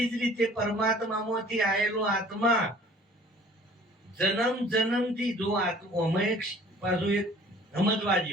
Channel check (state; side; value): normal; both; correlation 0.51